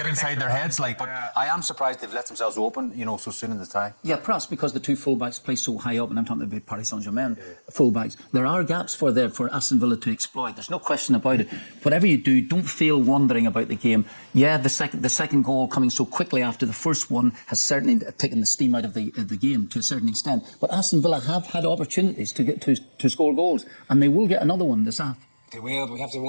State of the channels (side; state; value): both; inverted; correlation -1.00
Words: inside their heads, like. But I am surprised they've let themselves open, you know, so soon in the tie. Yeah, perhaps because the two fullbacks play so high up, and I'm talking about Paris Saint-Germain fullbacks. There are gaps for Aston Villa to exploit. There's no question about it. Whatever you do, don't feel wondering about the game. Yeah, the second goal coming so quickly after the first one has certainly taken the steam out of the game to a certain extent. But Aston Villa have had opportunities to get to score goals, and they will get another one this half. They will, but we have to